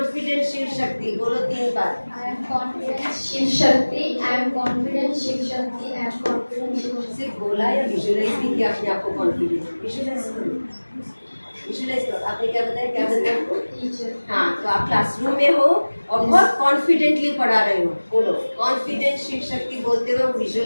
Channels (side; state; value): both; inverted; correlation -1.00